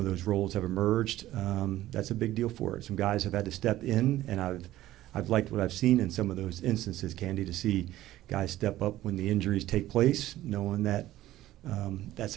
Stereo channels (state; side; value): quieter; left; 14.8 dB